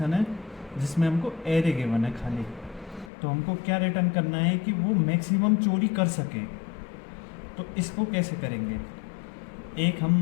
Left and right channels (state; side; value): drops out; right; at 3.1 s